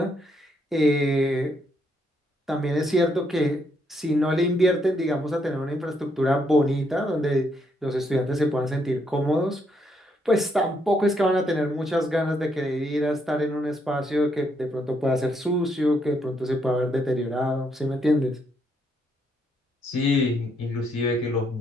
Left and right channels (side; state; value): both; normal; correlation 0.75